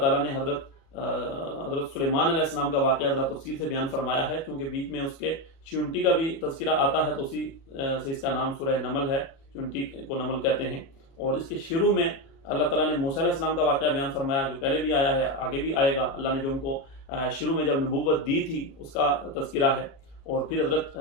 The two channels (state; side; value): late; right; 36 ms